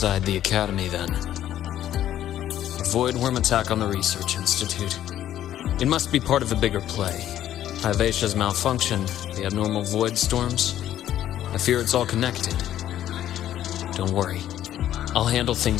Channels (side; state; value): right; quieter; 11.9 dB